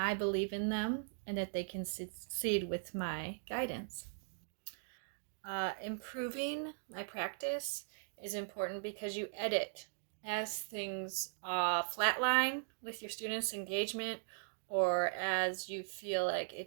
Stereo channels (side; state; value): left; silent; digital silence